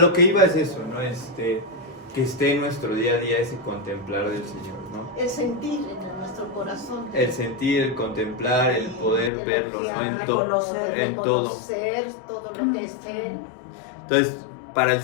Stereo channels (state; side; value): drops out; right; at 9.3 s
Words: que iba es eso, ¿no? Que esté en nuestro día a día ese contemplar del Señor, ¿no? El sentir en nuestro corazón. El sentir, el contemplar, el poder verlo, ¿no? En todo. Reconocer todo lo que es Él. Entonces, para el